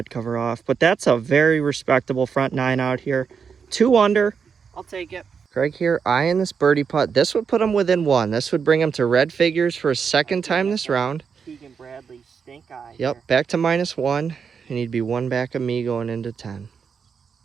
cover off, but that's a very respectable front 9 out here. 2 under. I'll take it. Craig here eyeing this birdie putt. This would put him within 1. This would bring him to red figures for a second time this round. Keegan Bradley stink eye. Yep, here. back to -1, and he'd be 1 back of me going into 10.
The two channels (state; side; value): quieter; left; 6.3 dB